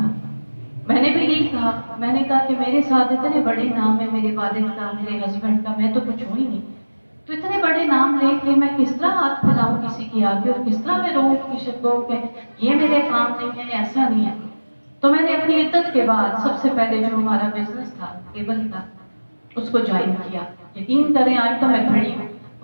میں نے بھی یہی کہا، میں نے کہا کہ میرے ساتھ اتنے بڑے نام ہے، میرے والد کا، میرے ہسبینڈ کا، میں تو کچھ ہوں ہی نہیں، تو اتنے بڑے نام لے کے میں کس طرح ہاتھ پھیلاؤں کسی کی آگے، اور کس طرح میں روؤں کسی کو کہ یہ میرے کام نہیں ہے، ایسا نہیں ہے۔ تو میں نے اپنی عدت کے بعد سب سے پہلے جو ہمارا بزنس تھا کیبل کا، اس کو جوائن کیا۔ یقین کریں آج تو میں کھڑی ہوں،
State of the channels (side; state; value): both; inverted; correlation -1.00